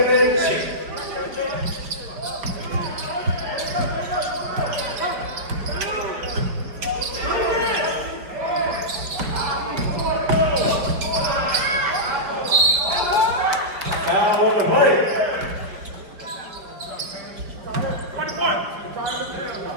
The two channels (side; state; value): left; late; 5.0 ms